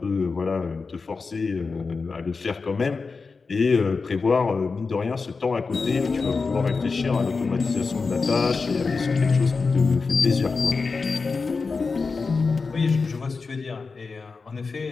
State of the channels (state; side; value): quieter; right; 4.5 dB